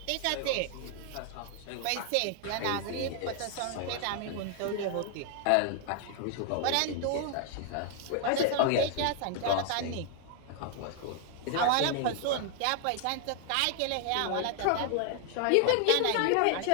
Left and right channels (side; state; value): both; different; correlation 0.00